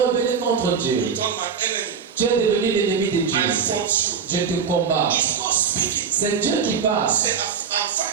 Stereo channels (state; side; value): quieter; left; 6.5 dB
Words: contre Dieu. You turn my enemy. Tu es devenu l'ennemi de Dieu. I fought you. Je te combats. It's God speaking. C'est Dieu qui parle. He said, I'm